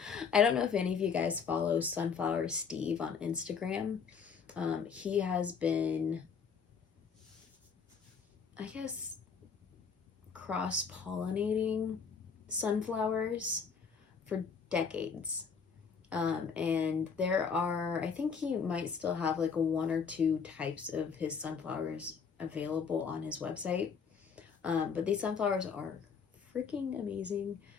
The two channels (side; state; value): right; quieter; 6.1 dB